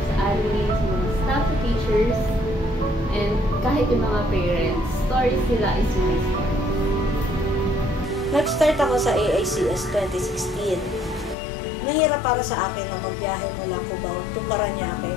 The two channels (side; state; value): right; drops out; at 11.4 s